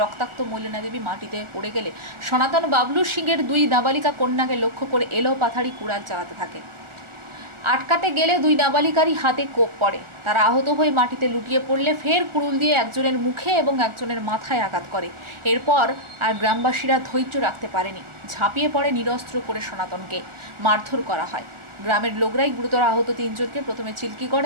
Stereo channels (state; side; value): late; left; 1.4 ms